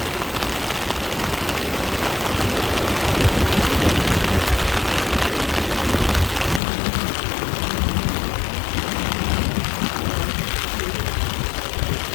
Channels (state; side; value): drops out; right; at 6.6 s